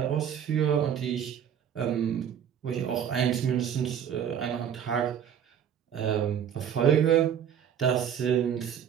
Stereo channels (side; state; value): left; quieter; 8.7 dB